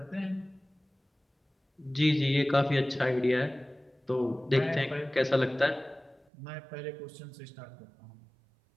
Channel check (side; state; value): left; drops out; at 6.2 s